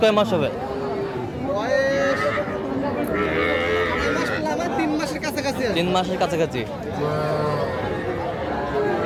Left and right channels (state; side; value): identical; both; correlation 1.00